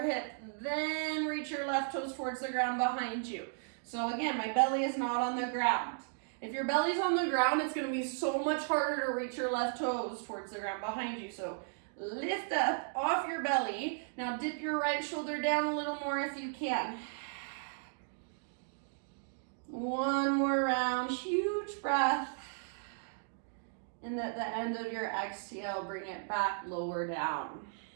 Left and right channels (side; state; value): left; silent; digital silence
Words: hip. Then reach your left toes towards the ground behind you. So again, my belly is not on the ground. If your belly's on the ground, it's going to be so much harder to reach your left toes towards the ground behind you. So lift up off your belly. Now dip your right shoulder down a little more if you can. One more round, huge breath. And at the end of your exhale, bring it back, lower down.